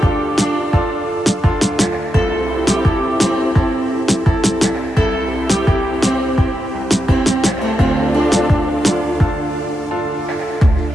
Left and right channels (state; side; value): normal; both; correlation 0.86